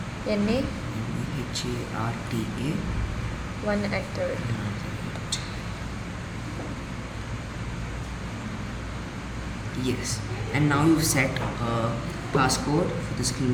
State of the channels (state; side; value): identical; both; correlation 1.00